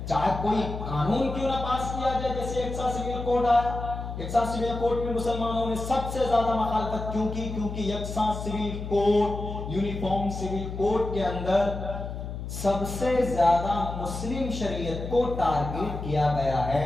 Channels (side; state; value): left; noise; hum, 7 dB below the sound